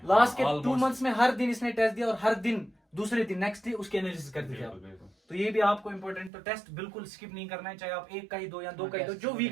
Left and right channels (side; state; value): left; drops out; at 6.3 s